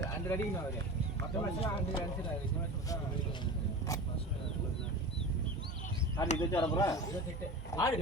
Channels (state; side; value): normal; both; correlation 0.32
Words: அடிக்கு நான் வரேன். மத்த மேட்ச்ல 100 அடிச்சாரு. இந்த மேட்ச் ஆடி இது வர போறா ஆடு.